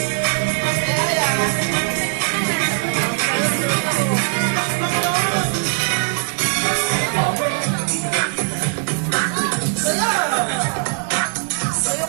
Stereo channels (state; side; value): silent; left; digital silence